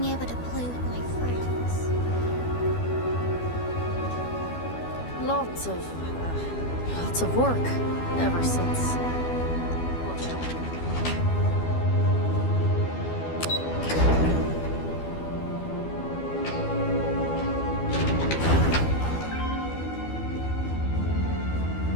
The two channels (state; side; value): late; right; 12 ms